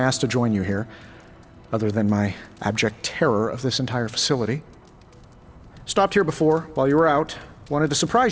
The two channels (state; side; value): identical; both; correlation 1.00